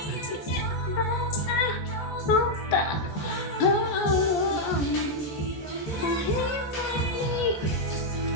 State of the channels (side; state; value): right; late; 14 ms